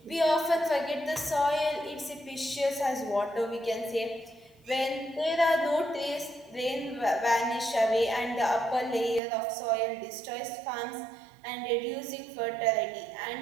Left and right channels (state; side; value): drops out; left; at 9.2 s